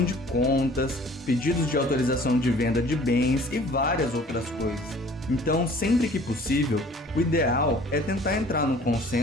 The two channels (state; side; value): normal; both; correlation 0.51